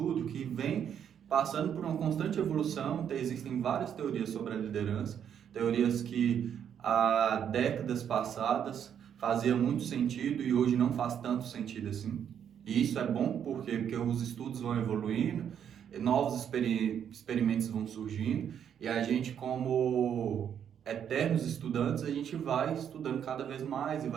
que vem passando por uma constante evolução. Existem várias teorias sobre a liderança, teorias que há décadas passadas fazia muito sentido e hoje não faz tanto sentido assim. E isso é bom porque os estudos vão evoluindo, novos experimentos vão surgindo e a gente, como eternos estudantes, a gente vai estudando cada vez mais e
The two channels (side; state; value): left; quieter; 8.7 dB